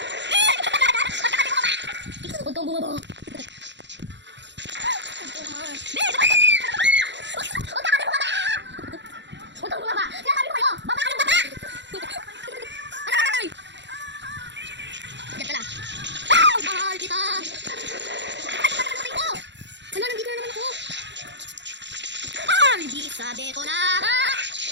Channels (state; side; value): late; left; 0.52 ms